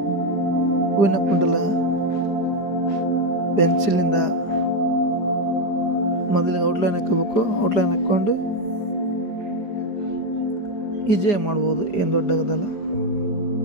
ಹೂವಿನ ಕುಂಡಲ ಪೆನ್ಸಿಲಿಂದ ಮೊದಲಿಗೆ ಔಟ್ಲೈನ್ ಹಾಕೋಬೇಕು. ಔಟ್ಲೈನ್ ಹಾಕ್ಕೊಂಡು ಈಜಿಯಾಗಿ ಮಾಡ್ಬೋದು, ಏನು ದೊಡ್ಡದಲ್ಲ.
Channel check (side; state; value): right; late; 5.0 ms